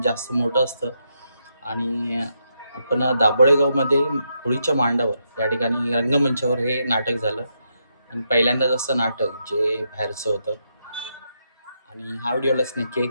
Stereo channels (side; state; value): both; inverted; correlation -0.81